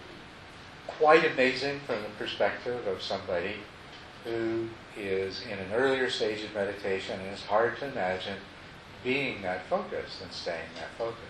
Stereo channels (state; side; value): identical; both; correlation 1.00